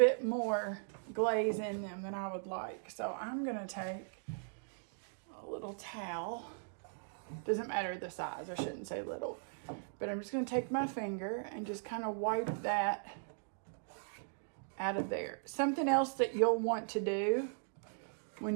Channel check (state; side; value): silent; left; digital silence